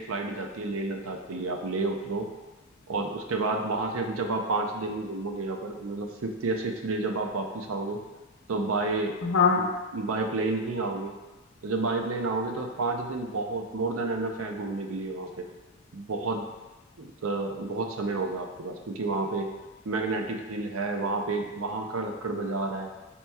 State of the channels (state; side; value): normal; both; correlation 0.05